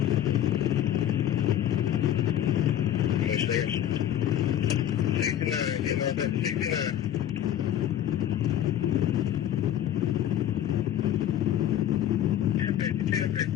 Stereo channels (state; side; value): quieter; right; 11.2 dB